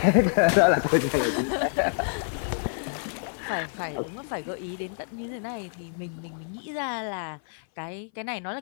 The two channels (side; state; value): right; silent; 57 dB below the other